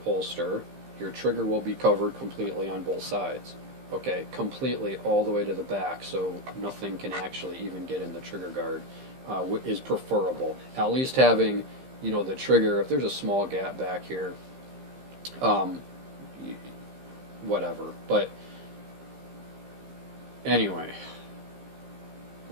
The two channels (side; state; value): left; late; 15 ms